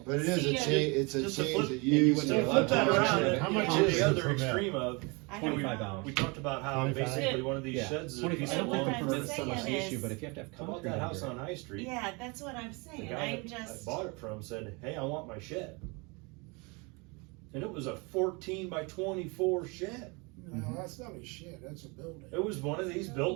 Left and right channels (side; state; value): left; quieter; 28.9 dB